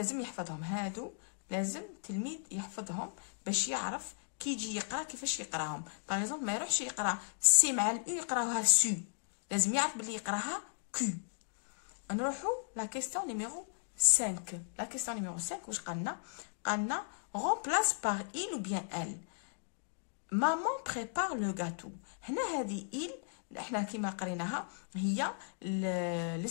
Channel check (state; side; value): silent; right; digital silence